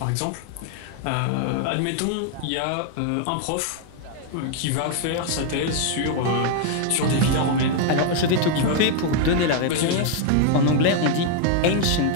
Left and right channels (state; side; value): different; both; correlation 0.00